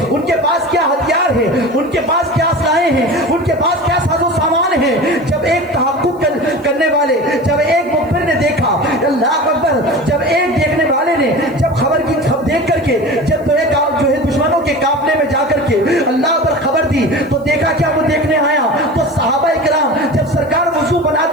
उनके पास क्या हथियार है, उनके पास क्या असलाहें हैं, उनके पास क्या साजो सामान है। जब एक तहक्कुक करने वाले, जब एक मुखबिर ने देखा, अल्लाह अकबर, जब एक देखने वाले ने जब खबर की देख करके जब तो एक जो है दुश्मनों के काफले में जाकर के अल्लाह पर खबर दी तो देखा क्या वो देखने आया तो सहाबा इकराम जब सरकार वुजू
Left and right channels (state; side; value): noise; left; hiss, 30 dB below the sound